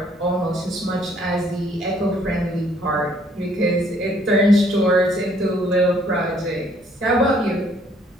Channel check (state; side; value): normal; both; correlation 0.64